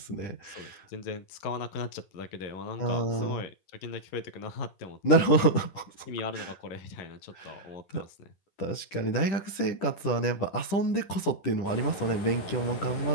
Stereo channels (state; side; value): late; right; 10 ms